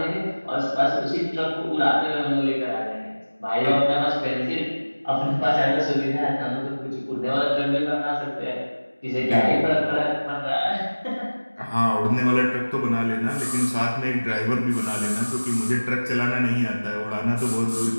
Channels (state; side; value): inverted; both; correlation -1.00